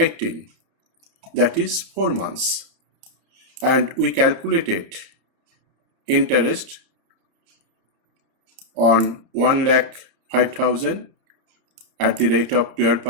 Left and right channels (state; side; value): late; left; 30 ms